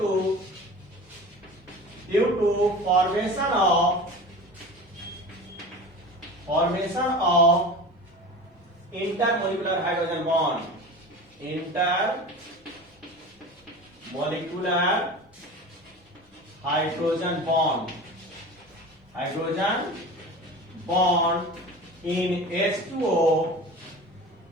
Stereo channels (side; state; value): both; normal; correlation 0.35